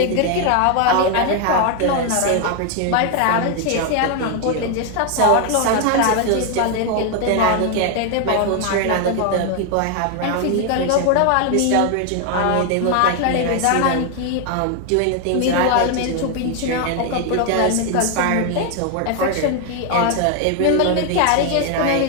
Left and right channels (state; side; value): different; both; correlation 0.01